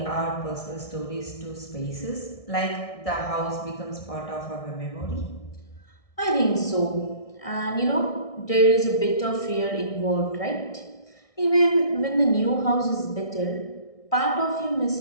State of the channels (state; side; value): late; right; 1.6 ms